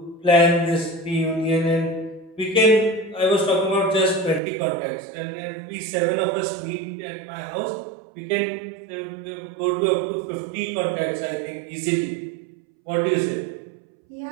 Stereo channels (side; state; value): left; drops out; at 4.4 s